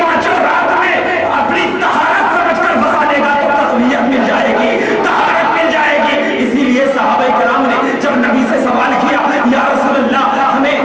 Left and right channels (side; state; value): both; identical; correlation 1.00